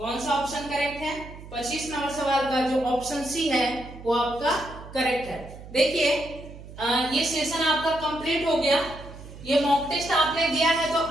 सा ऑप्शन करेक्ट है, 25 नंबर सवाल का जो ऑप्शन सी है वो आपका करेक्ट है। देखिए ये सेशन आपका कंप्लीट हो गया। ये मॉक टेस्ट आपने दिया है तो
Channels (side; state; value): right; noise; hum, 15 dB below the sound